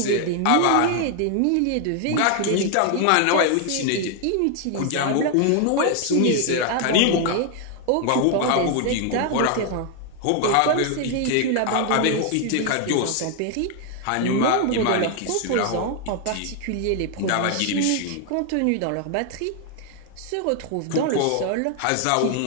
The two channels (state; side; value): different; both; correlation 0.00